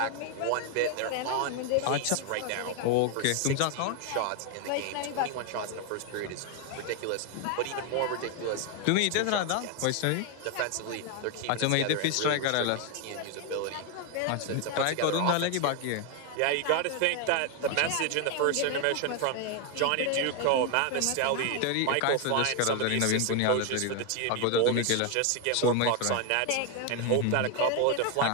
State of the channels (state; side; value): different; both; correlation 0.01